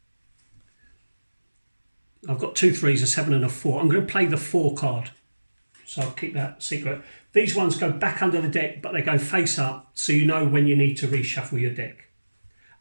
I've got 2 3s, a 7 and a 4. I'm going to play the 4 card. So I'll keep that secret. These ones go back under the deck, but they go face up, so you know when you need to reshuffle your deck.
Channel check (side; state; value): both; inverted; correlation -1.00